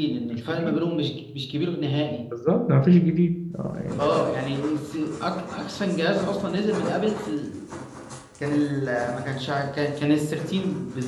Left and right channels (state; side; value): identical; both; correlation 1.00